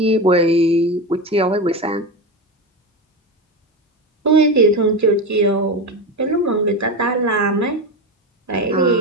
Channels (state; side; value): normal; both; correlation 0.19